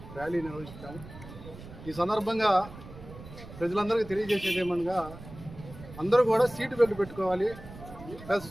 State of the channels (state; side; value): noise; right; rumble, 15 dB below the sound